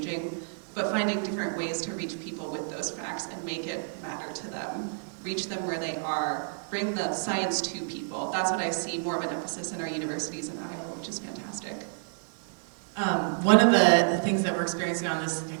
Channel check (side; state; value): left; silent; 58 dB below the other